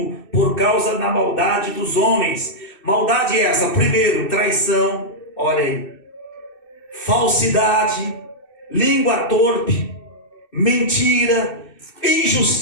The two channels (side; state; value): right; late; 2.6 ms